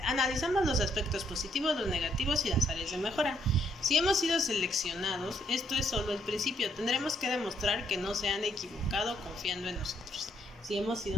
los aspectos positivos, los negativos y las áreas de mejora. Si hemos sido seleccionados, esto es solo el principio. Tendremos que demostrar que no se han equivocado confiando en nosotros. Si hemos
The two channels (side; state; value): both; normal; correlation 0.72